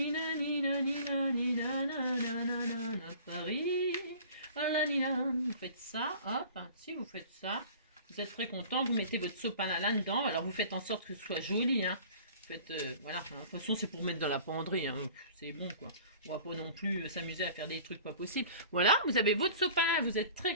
Paris. Vous faites ça, hop, si vous faites ça, vous êtes très content, vous mettez votre sopalin là-dedans, alors vous faites en sorte que ce soit joli, hein. Vous faites, voilà, de toute façon c'est pour mettre dans la penderie, hein. C'est bon quoi, on va pas non plus s'amuser à faire des trucs pas possibles. Voilà, vous avez votre sopalin, vous êtes très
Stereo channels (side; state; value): both; inverted; correlation -0.45